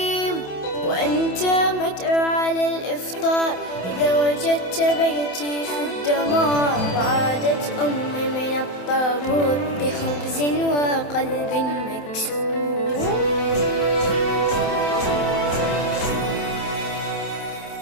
وأنت مدعو على الإفطار. إذا وجدت بيتي في الدمار وعادت أمي من الطابور بخبز وقلب مكسور.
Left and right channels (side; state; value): right; late; 27 ms